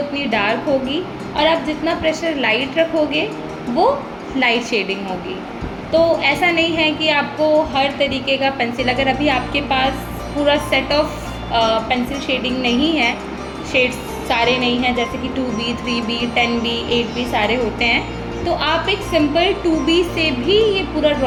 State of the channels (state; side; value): identical; both; correlation 1.00